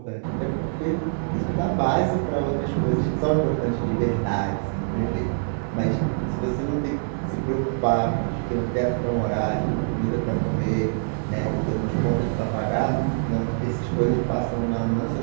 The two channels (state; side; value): silent; left; 60 dB below the other